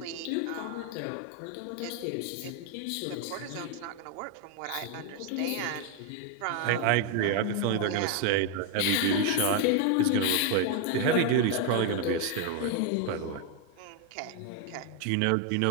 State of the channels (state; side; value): different; both; correlation 0.01